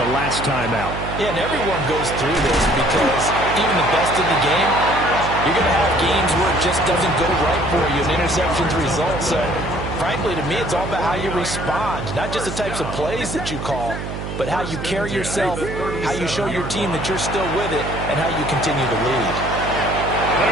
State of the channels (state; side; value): noise; right; hum, 6 dB below the sound